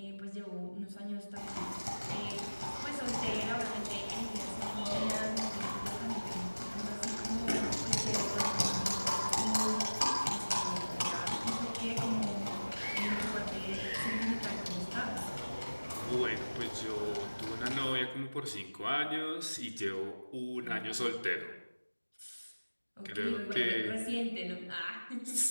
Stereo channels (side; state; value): both; inverted; correlation -1.00